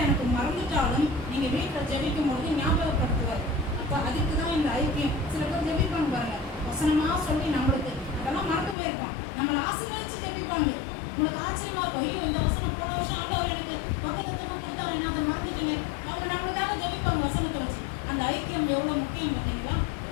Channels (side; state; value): right; drops out; at 8.8 s